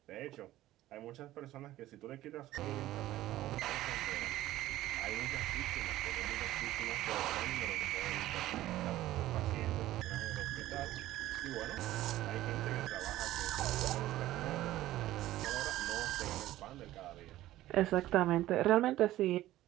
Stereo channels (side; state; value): left; quieter; 15.1 dB